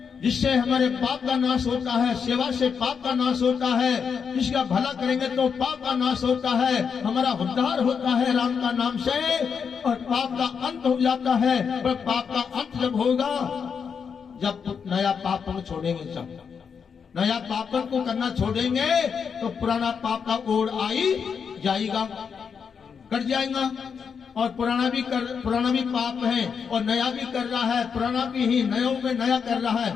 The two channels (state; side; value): quieter; right; 6.4 dB